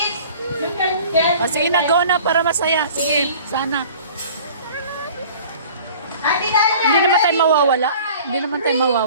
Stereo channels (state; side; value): inverted; both; correlation -0.47